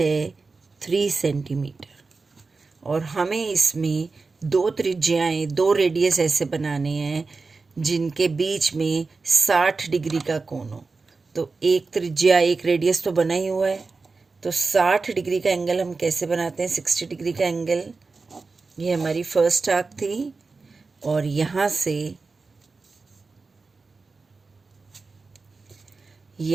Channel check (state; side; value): quieter; left; 4.1 dB